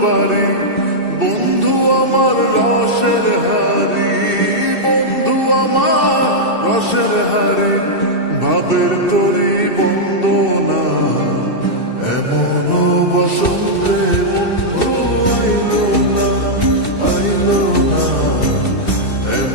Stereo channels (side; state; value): right; late; 2.7 ms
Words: বাড়ি। বন্ধু আমার রসের হারি, বন্ধু আমার রসের হারি, ভাবের তরি বন্দনা এমন বসন্তে বন্ধু আইলো না, আইলো না,